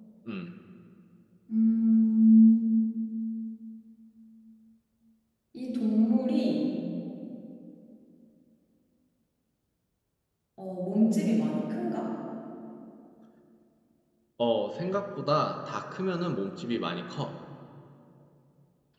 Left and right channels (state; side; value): identical; both; correlation 1.00